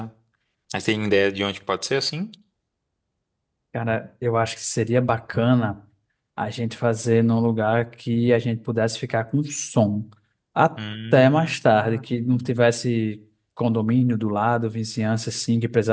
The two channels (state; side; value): identical; both; correlation 1.00